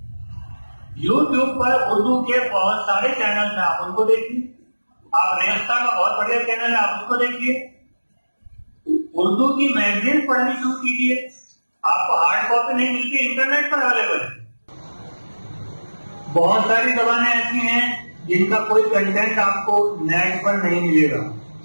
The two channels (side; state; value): both; inverted; correlation -1.00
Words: यूट्यूब पर उर्दू के बहुत सारे चैनल हैं, आप उनको देखिए। आप रेस्ता का बहुत बढ़िया चैनल है, आप उसको देखिए। उर्दू की मैगजीन पढ़नी शुरू कीजिए, आपको हार्ड कॉपी नहीं मिलती, इंटरनेट पर अवेलेबल है। बहुत सारी जबानें ऐसी हैं जिनका कोई कंटेंट आपको नेट पर नहीं मिलेगा।